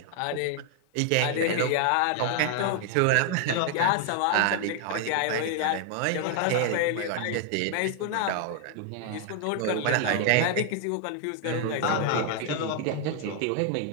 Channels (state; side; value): different; both; correlation 0.00